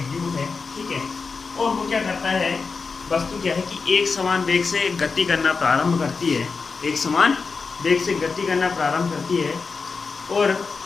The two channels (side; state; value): right; quieter; 4.7 dB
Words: वेग u है। ठीक है, और वो क्या करता है, वस्तु क्या है कि एक समान वेग से गति करना प्रारंभ करती है, एक समान वेग से गति करना प्रारंभ करती है, और